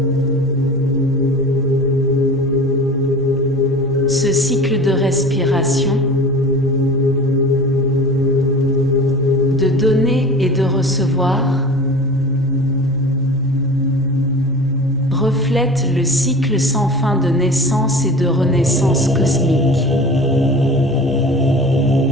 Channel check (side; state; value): both; normal; correlation 0.37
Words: Ce cycle de respiration, de donner et de recevoir, reflète le cycle sans fin de naissance et de renaissance cosmique.